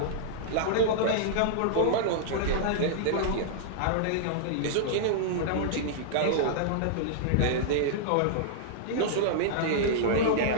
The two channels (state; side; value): different; both; correlation -0.02